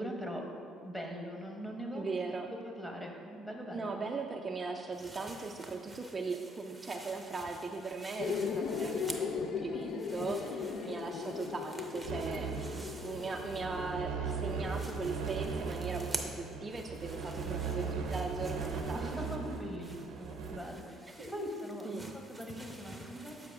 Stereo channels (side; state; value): both; normal; correlation 0.66